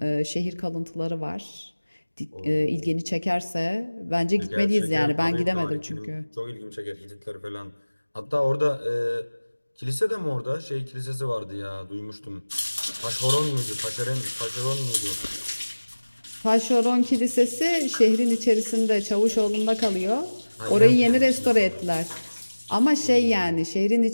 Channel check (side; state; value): both; inverted; correlation -1.00